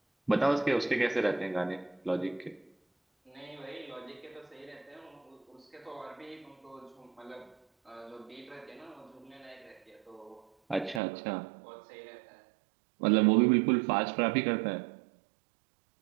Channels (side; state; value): left; drops out; at 11.0 s